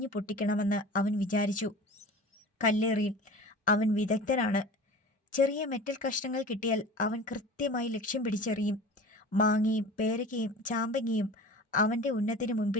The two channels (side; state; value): both; normal; correlation 0.38